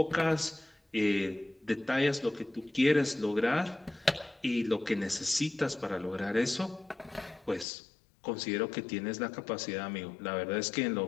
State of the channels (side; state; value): right; drops out; at 7.7 s